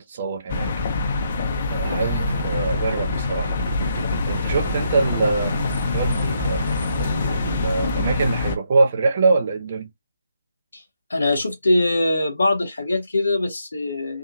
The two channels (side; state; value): both; inverted; correlation -0.77